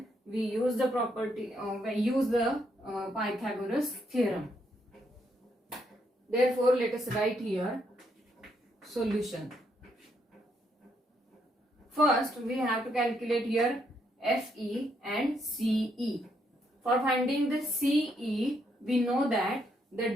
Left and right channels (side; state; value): both; normal; correlation 0.75